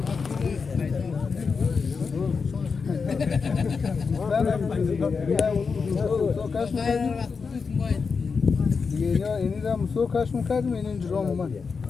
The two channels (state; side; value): quieter; right; 5.2 dB